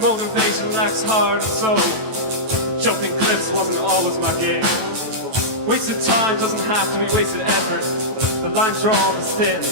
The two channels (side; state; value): left; late; 24 ms